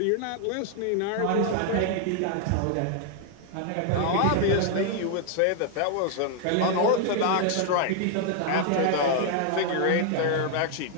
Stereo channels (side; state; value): both; different; correlation 0.00